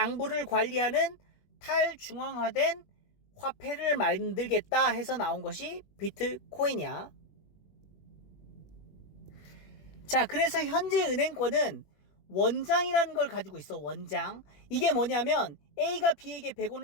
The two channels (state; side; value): late; right; 21 ms